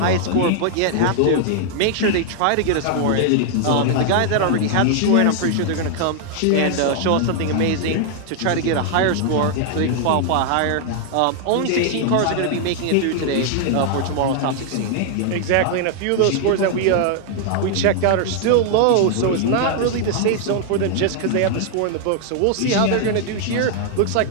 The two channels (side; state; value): both; different; correlation 0.00